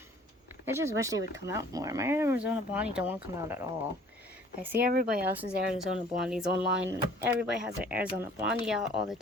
I just wish they would come out more. My Arizona Blondie don't want to come out at all. I see everybody else's Arizona Blondies online. And everybody has their Arizona Blondie out all the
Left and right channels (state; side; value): normal; both; correlation 0.53